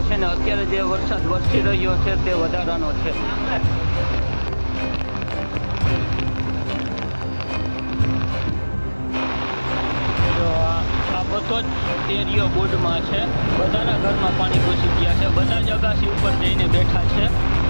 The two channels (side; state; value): both; inverted; correlation -1.00